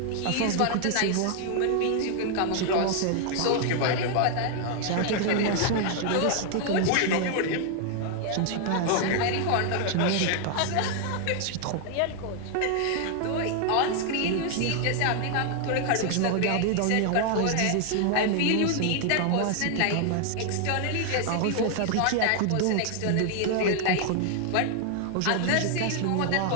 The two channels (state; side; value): different; both; correlation 0.00